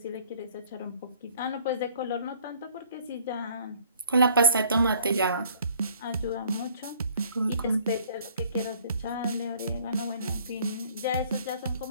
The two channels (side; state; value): both; inverted; correlation -0.56